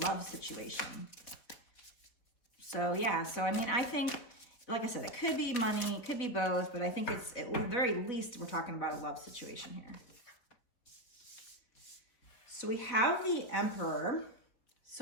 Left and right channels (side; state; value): right; late; 4.1 ms